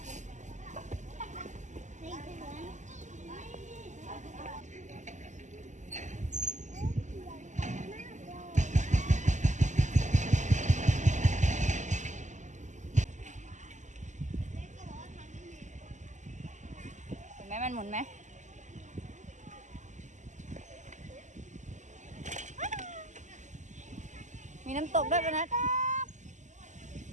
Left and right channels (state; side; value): late; left; 0.35 ms